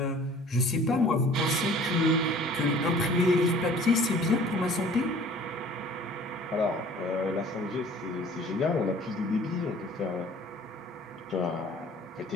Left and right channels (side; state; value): both; normal; correlation 0.50